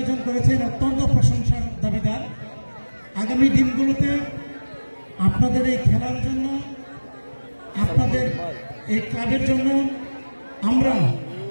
করেছেন অত্যন্ত প্রশংসার দাবিদার। আগামী দিনগুলোতে আপনাদের এই খেলার জন্য, আপনাদের এই ক্লাবের জন্য আমরা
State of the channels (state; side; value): inverted; both; correlation -1.00